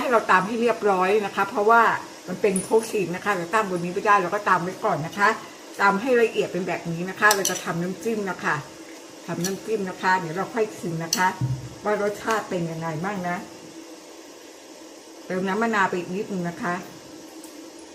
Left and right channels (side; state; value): both; identical; correlation 1.00